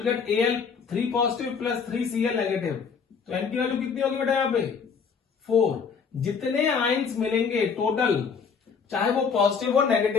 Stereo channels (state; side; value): quieter; right; 5.9 dB